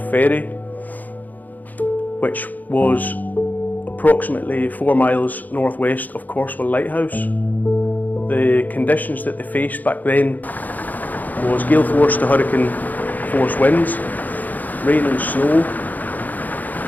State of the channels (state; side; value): late; right; 0.082 ms